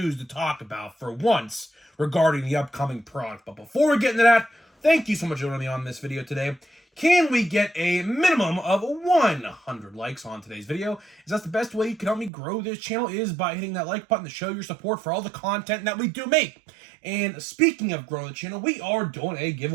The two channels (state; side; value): drops out; left; at 12.3 s